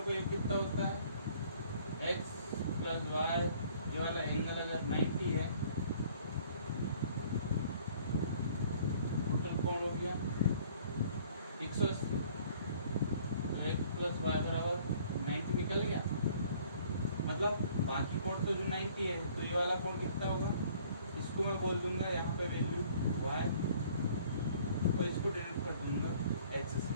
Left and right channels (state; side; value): inverted; both; correlation -0.56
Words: को एक कितना होता है x प्लस वाई, ये वाला एंगल अगर 90 है, टोटल कोण हो गया 180। तो x प्लस वाई बराबर 90 निकल गया। मतलब बाकी कोण तो जो 90 है, तो ये वाला कोण कितना होगा, इसको मैं बोल दूंगा यहाँ पे वैल्यू y और इसको डिनोट कर दूंगा x से।